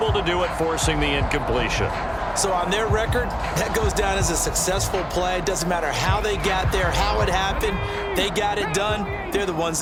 to do it, forcing the incompletion. So on their record, that goes down as a successful play. It doesn't matter how they got there, how it happened. They got it done. They're the ones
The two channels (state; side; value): identical; both; correlation 1.00